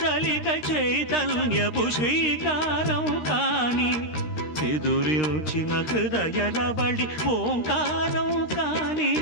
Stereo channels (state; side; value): late; right; 13 ms